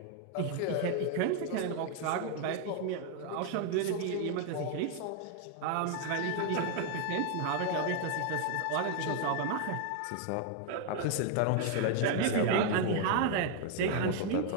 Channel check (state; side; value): different; both; correlation 0.00